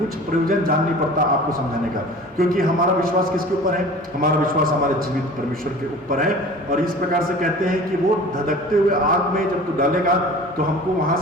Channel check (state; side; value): normal; both; correlation 0.42